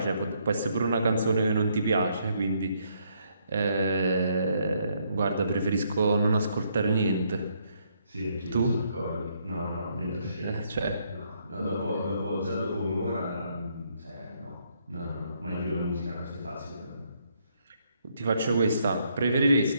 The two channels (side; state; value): both; inverted; correlation -0.72